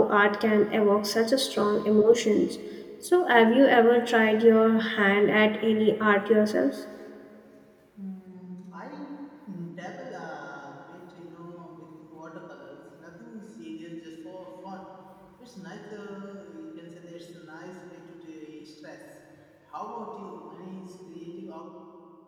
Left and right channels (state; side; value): identical; both; correlation 1.00